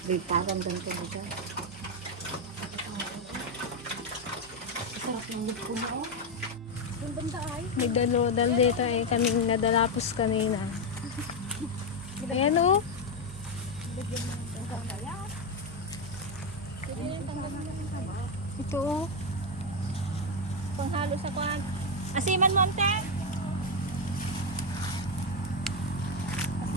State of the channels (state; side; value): noise; left; hum, 27 dB below the sound